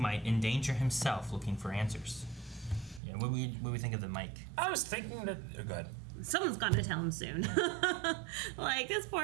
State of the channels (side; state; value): left; drops out; at 3.0 s